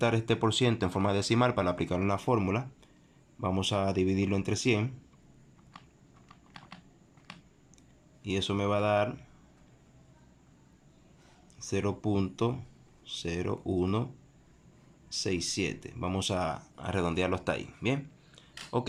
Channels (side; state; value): both; identical; correlation 1.00